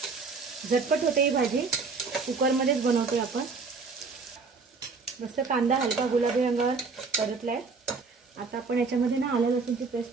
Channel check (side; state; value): left; quieter; 4.6 dB